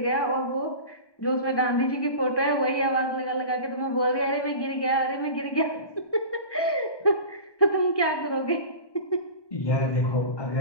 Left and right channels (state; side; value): late; right; 1.2 ms